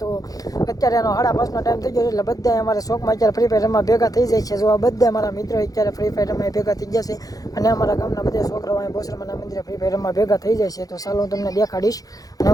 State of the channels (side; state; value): right; late; 0.17 ms